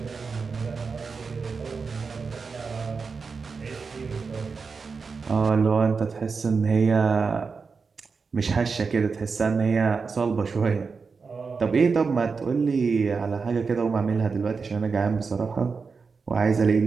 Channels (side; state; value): left; quieter; 5.0 dB